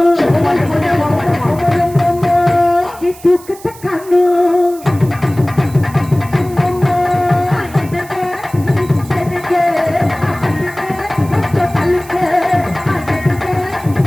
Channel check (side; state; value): right; noise; hiss, 20 dB below the sound